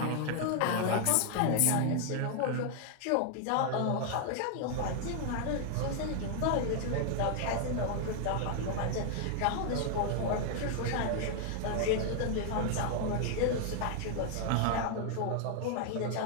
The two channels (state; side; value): different; both; correlation 0.00